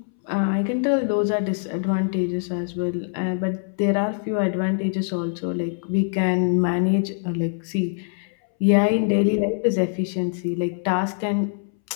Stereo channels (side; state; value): right; silent; 62 dB below the other